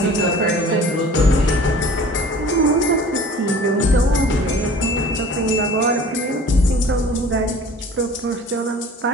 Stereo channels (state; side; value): normal; both; correlation 0.45